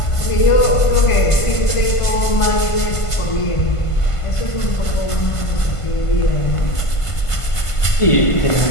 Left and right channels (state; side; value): late; right; 1.5 ms